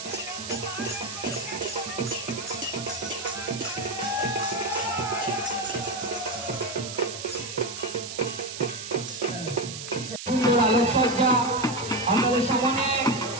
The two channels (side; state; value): right; noise; hiss, 9 dB below the sound